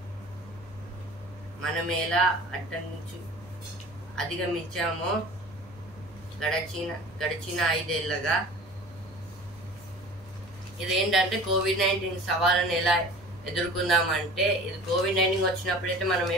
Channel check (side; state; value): both; normal; correlation 0.41